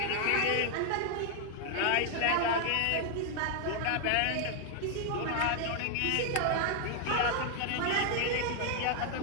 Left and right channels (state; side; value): different; both; correlation 0.00